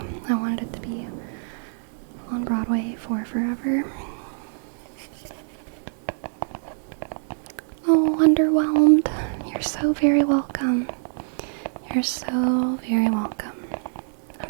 I wanted it to be on Broadway for forever. Oh, underwhelmed. You're so very welcome. You're so very welcome.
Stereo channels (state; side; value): silent; left; digital silence